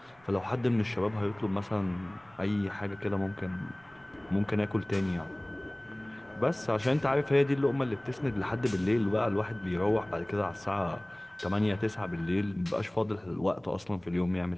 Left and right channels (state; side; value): noise; right; rumble, 29 dB below the sound